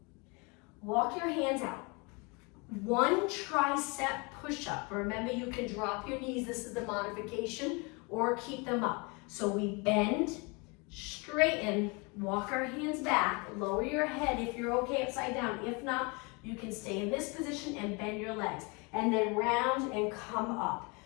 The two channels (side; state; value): right; quieter; 29.9 dB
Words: Walk your hands out. 1 tricep push-up. Remember, you can drop your knees. This is the modification, or keep them up. So we bend, straighten, walk our hands back, lower your head if you're okay upside down. If not, you can stay in this position and bend your legs. And then round and come up.